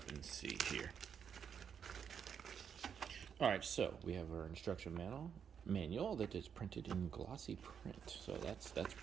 and see here. All right, so we have our instruction manual that is printed in glossy print. So that's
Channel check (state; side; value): quieter; left; 7.5 dB